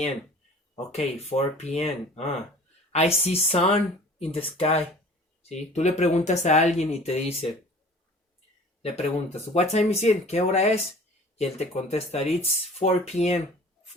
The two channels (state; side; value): normal; both; correlation 0.46